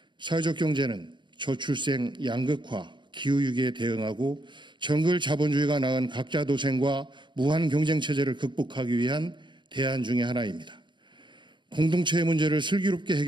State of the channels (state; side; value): late; left; 0.23 ms